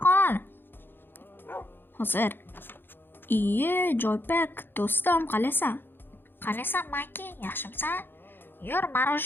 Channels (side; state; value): right; late; 0.10 ms